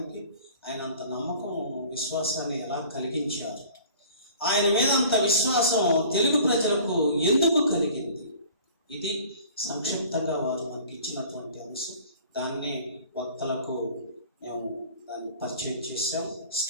ఆయన అంత నమ్మకం, విశ్వాసాన్ని ఎలా కలిగించారు? ఆయన మీద అంత విశ్వాసం తెలుగు ప్రజలకు ఎందుకు కలిగింది? ఇది సంక్షిప్తంగా వారు మనకి ఇచ్చినటువంటి అంశం. దాన్ని వక్తలకు మేము దాన్ని పరిచయం చేశాం.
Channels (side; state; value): both; inverted; correlation -0.47